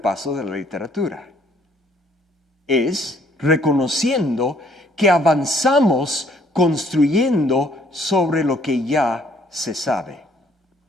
de la literatura. Es reconociendo que avanzamos construyendo sobre lo que ya se sabe.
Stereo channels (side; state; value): both; normal; correlation 0.63